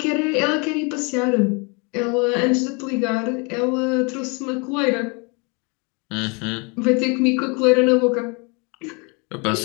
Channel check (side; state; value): right; quieter; 31.8 dB